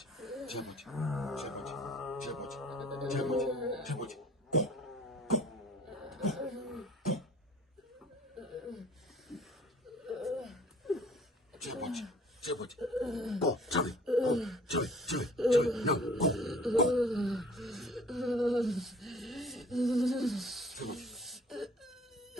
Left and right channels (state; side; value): normal; both; correlation 0.51